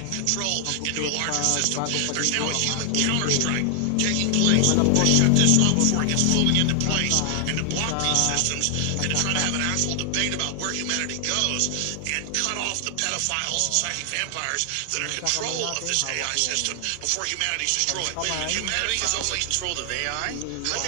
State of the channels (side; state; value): both; different; correlation 0.00